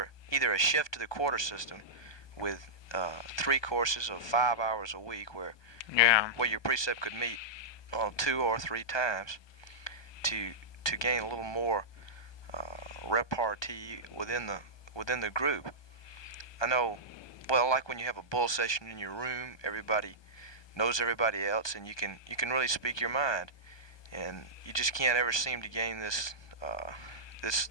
a shift to the quarter system with 3 courses of 5 hours a week Yeah. where your precept could meet 2 or 3 times to gain a little more repartee within the group. I know, well, like when you have a bull session in your room, everybody knows everybody else, and you can really speak your mind, and you just can't ever seem to gain this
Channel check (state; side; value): late; right; 1.2 ms